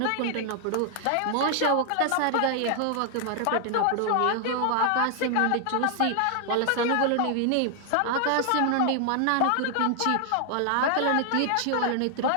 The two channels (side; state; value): both; different; correlation 0.00